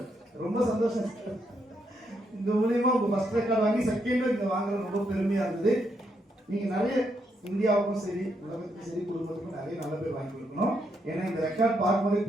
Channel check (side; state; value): both; normal; correlation 0.78